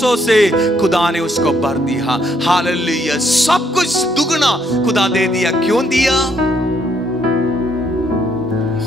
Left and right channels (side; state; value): both; normal; correlation 0.71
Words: से खुदा ने उसको भर दिया. हालेलुया. सब कुछ दुगना खुदा दे दिया. क्यों दिया?